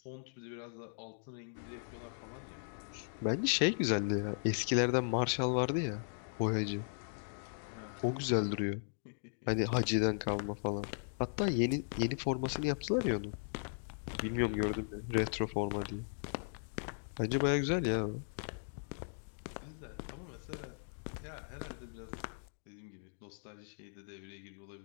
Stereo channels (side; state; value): right; silent; digital silence